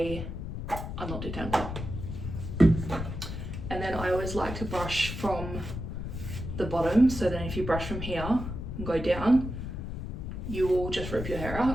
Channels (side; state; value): left; noise; rumble, 6 dB below the sound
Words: unknot detangler. And then I always like to brush from the bottom, so then if you brush from here and go down, you will just rip your hair